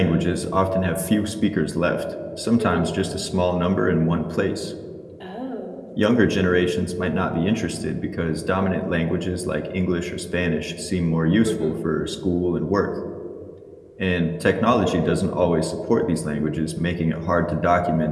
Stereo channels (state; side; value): identical; both; correlation 1.00